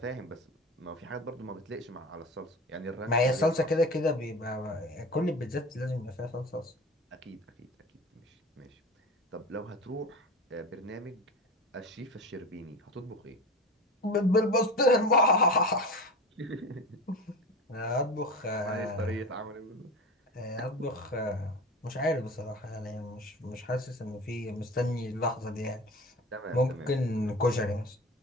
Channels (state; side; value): normal; both; correlation 0.32